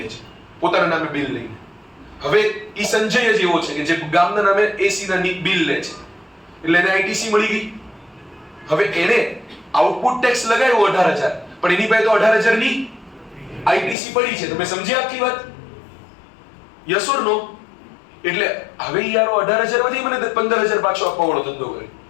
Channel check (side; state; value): right; drops out; at 14.0 s